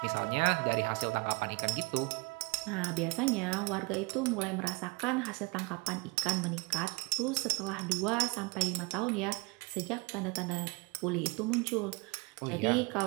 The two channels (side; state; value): left; quieter; 27.7 dB